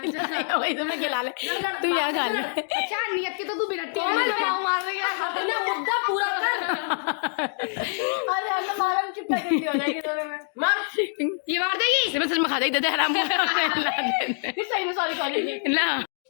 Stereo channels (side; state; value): right; silent; digital silence